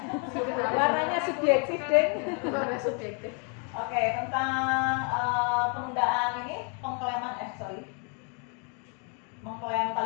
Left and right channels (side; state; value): right; quieter; 38.3 dB